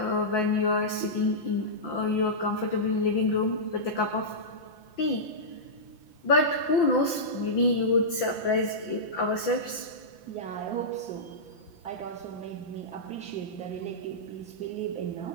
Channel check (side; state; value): right; late; 5.9 ms